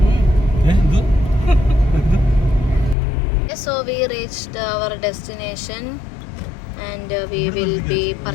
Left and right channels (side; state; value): right; drops out; at 3.0 s